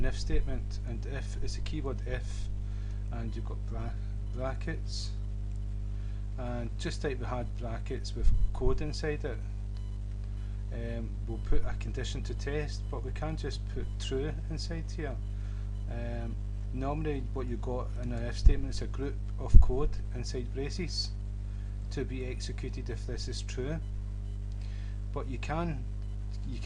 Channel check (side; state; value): both; identical; correlation 1.00